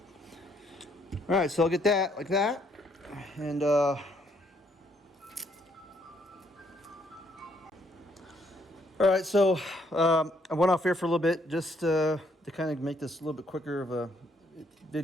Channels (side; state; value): both; normal; correlation 0.69